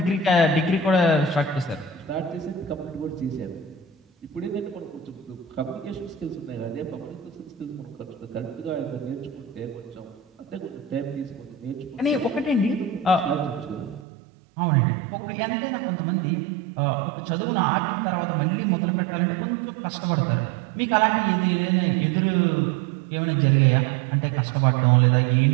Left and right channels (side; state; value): left; drops out; at 14.0 s